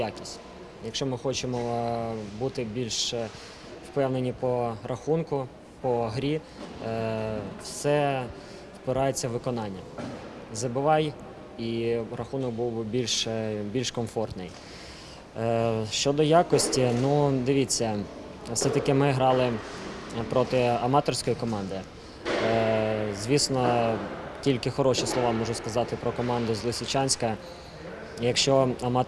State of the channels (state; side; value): identical; both; correlation 1.00